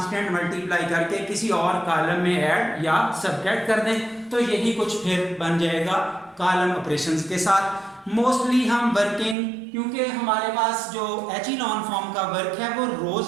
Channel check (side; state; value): left; drops out; at 9.3 s